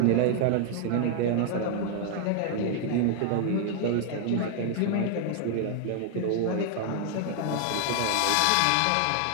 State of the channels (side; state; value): both; different; correlation 0.00